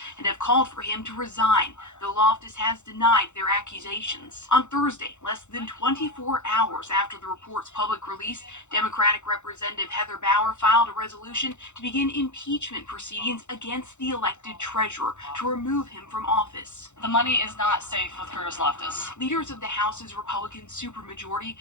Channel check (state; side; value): late; right; 0.83 ms